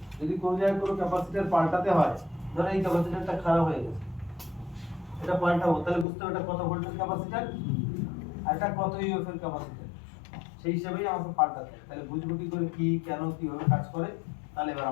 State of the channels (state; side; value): drops out; right; at 6.1 s